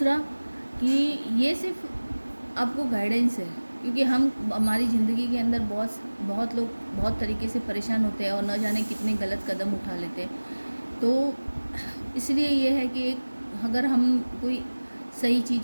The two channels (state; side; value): inverted; both; correlation -1.00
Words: कि ये सिर्फ आपको गाइडेंस है, क्योंकि हमारी ज़िंदगी के अंदर बहुत लोग बहुत तरीके से परेशान होते हैं और न जाने कितने गलत कदम उठा लेते हैं। तो इसलिए ये है कि अगर हम कोई सही